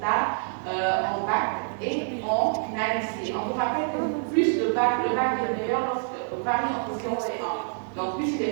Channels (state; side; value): silent; left; digital silence